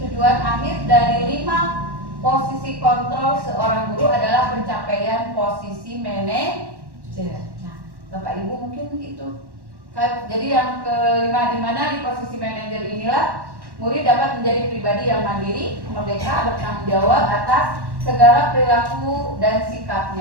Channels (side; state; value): left; late; 1.1 ms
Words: tujuan akhir dari 5 posisi kontrol seorang guru adalah pencapaian posisi manajer. Nah, Bapak Ibu mungkin itu. Jadi yang kelima, di mana di posisi manajer inilah murid dapat menjadi pribadi yang mandiri, merdeka, bertanggung jawab atas segala perilaku dan